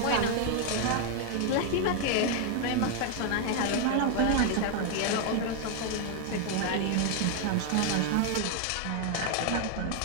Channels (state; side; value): different; both; correlation 0.00